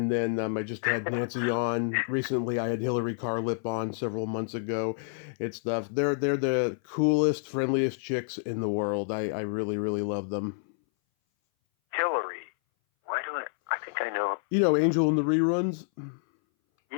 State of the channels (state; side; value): silent; right; 58 dB below the other